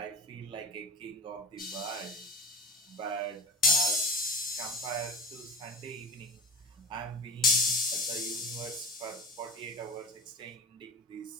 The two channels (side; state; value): both; normal; correlation 0.31